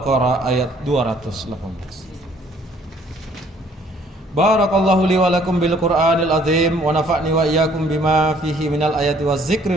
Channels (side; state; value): both; normal; correlation 0.60